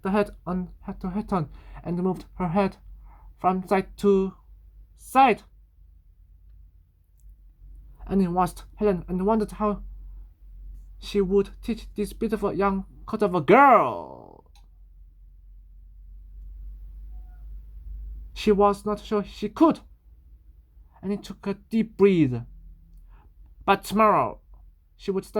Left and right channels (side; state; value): both; identical; correlation 1.00